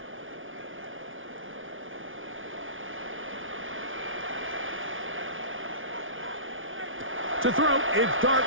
To throw, it's Dart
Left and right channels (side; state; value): left; late; 0.57 ms